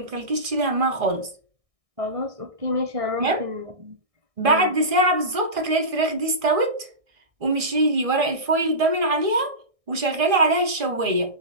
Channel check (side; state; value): left; late; 1.6 ms